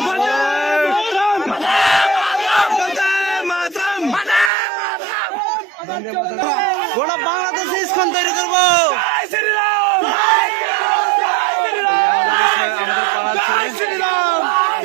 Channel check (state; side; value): drops out; left; at 4.5 s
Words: গোটা বাংলাদেশে ইসকন তৈরি করবো